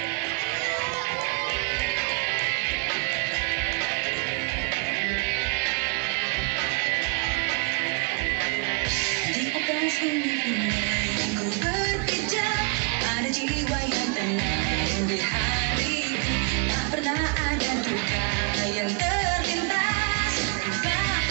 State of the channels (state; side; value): quieter; left; 31.7 dB